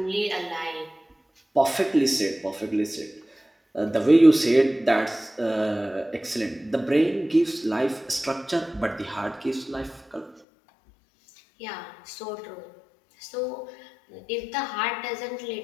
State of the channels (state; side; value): drops out; right; at 10.4 s